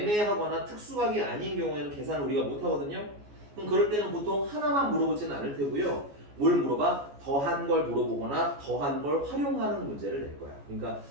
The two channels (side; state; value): left; late; 14 ms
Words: 특수각이 아닌 경우에는 계산을 우리가 못 하거든요. 그럼 그럴 때는 보통 하나만 물어보지는 않을 테고요. 뭘 물어봐? 더한 걸 물어보거나 더한 걸 활용하는 문제를 낼 거야. 그러니까